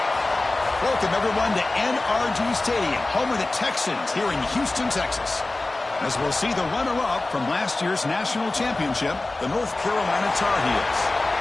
Welcome, everyone, to NRG Stadium, home of the Texans here in Houston, Texas. As we'll see the runner-up from last year's national championship, the North Carolina Tar Heels,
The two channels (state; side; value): quieter; right; 3.0 dB